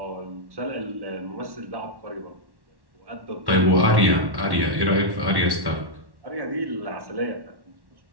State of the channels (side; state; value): left; late; 1.1 ms